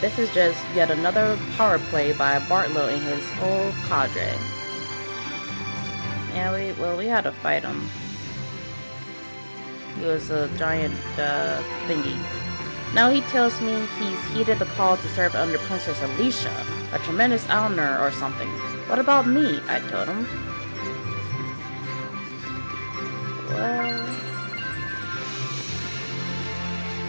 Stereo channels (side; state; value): both; inverted; correlation -1.00